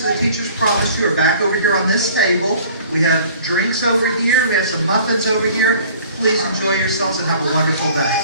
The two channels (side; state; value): both; inverted; correlation -0.49